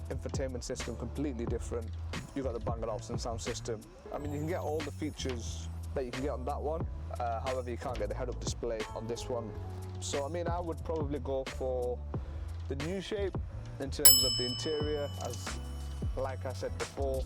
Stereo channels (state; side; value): identical; both; correlation 1.00